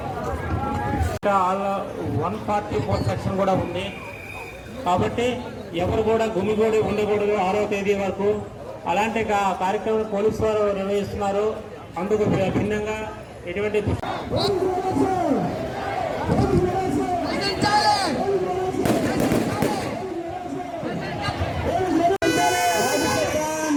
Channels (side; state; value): both; identical; correlation 1.00